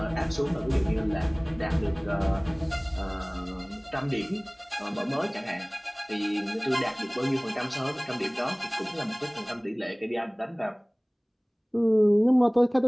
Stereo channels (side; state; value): both; identical; correlation 1.00